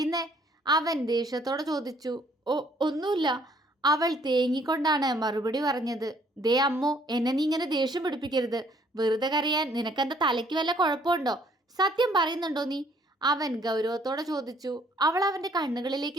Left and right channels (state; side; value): normal; both; correlation 0.63